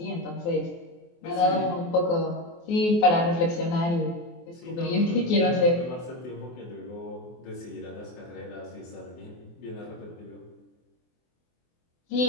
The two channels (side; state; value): right; late; 24 ms